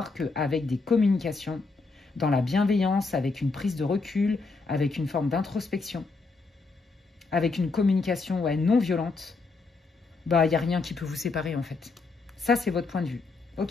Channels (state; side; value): quieter; right; 4.0 dB